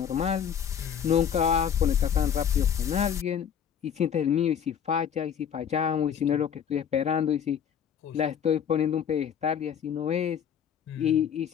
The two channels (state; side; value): quieter; right; 8.4 dB